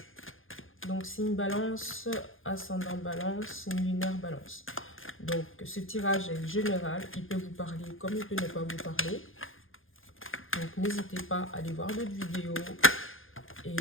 Donc, signe balance, ascendant balance, signe lunaire balance. Donc, ce tirage est général. Il peut vous parler comme il peut ne pas vous parler. Donc, n'hésitez pas à aller voir d'autres vidéos et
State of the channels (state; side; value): late; right; 0.59 ms